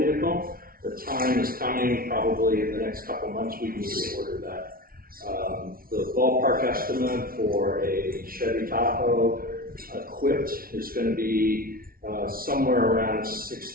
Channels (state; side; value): late; left; 0.43 ms